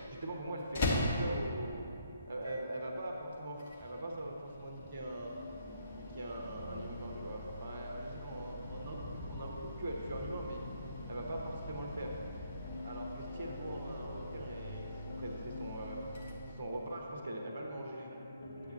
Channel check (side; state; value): both; inverted; correlation -0.69